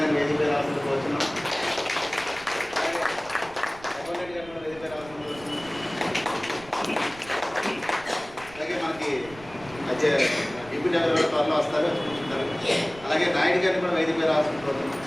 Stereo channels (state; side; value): noise; right; rumble, 20 dB below the sound